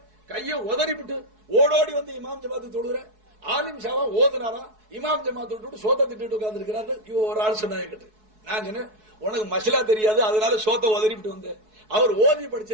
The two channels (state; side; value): late; left; 4.7 ms